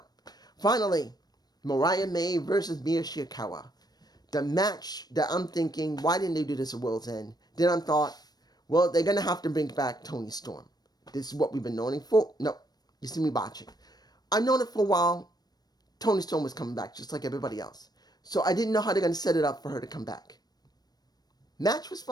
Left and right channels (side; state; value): right; late; 0.19 ms